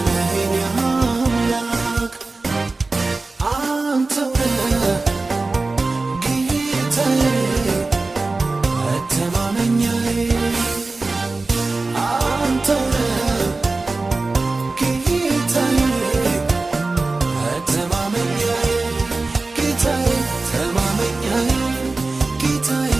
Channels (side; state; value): left; quieter; 3.5 dB